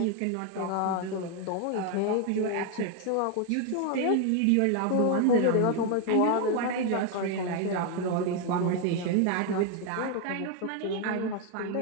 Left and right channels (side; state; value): both; different; correlation 0.01